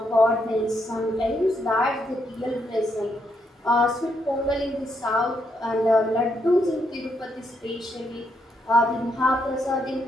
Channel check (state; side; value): normal; both; correlation 0.77